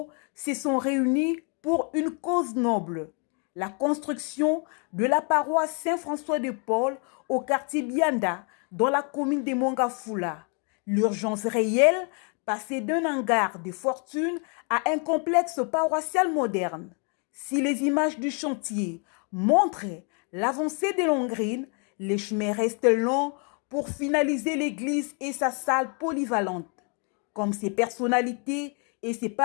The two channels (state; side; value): quieter; right; 37.5 dB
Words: se sont réunis pour une cause noble, la construction de la paroisse Saint-François de Paul au quartier Bianda, dans la commune de Mongafula. L'urgence réelle, passer d'un hangar de fortune à un complexe paroissial moderne. Si les images du chantier montrent l'avancée de Longrine, les chemins restent longs pour finaliser l'église et sa salle polyvalente. Comme ces personnalités et ces